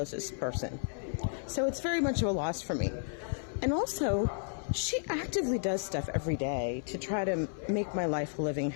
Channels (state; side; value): silent; right; 56 dB below the other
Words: person. So it's very much of a loss for me. And also, she actively does stuff every day to try to make my life a living